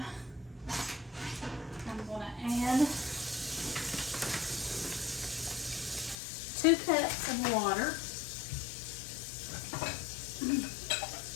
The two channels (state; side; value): drops out; right; at 6.2 s